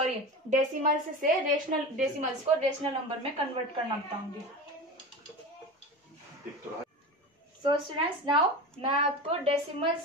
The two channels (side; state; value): both; normal; correlation 0.28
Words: डेसिमल्स से रेशनल नंबर में कन्वर्ट करना बताऊंगी। सो स्टूडेंट्स, नाउ मैं आपको